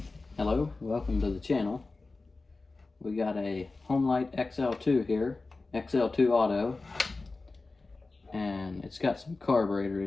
hello, welcome to the channel. We got a Homelite XL2 here, XL2 Auto, and it's got some carburetor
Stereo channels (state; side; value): quieter; right; 3.6 dB